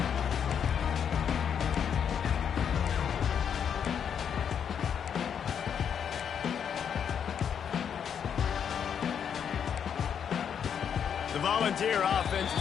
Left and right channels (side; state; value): right; quieter; 7.9 dB